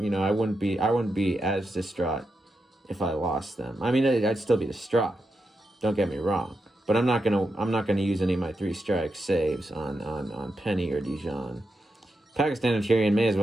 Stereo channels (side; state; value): both; normal; correlation 0.86